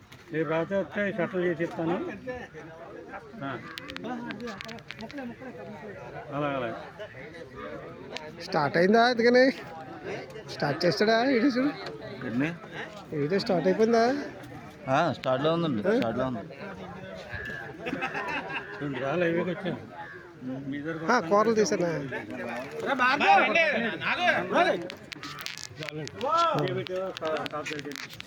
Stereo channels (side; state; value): both; identical; correlation 1.00